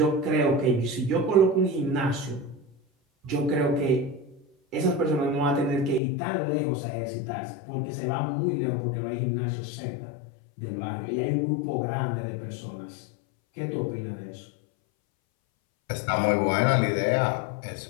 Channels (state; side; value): drops out; right; at 6.0 s